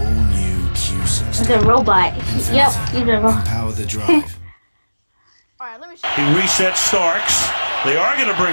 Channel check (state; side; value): inverted; both; correlation -1.00